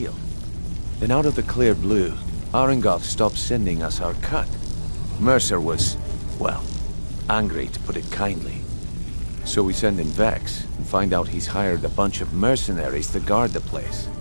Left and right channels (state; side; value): inverted; both; correlation -1.00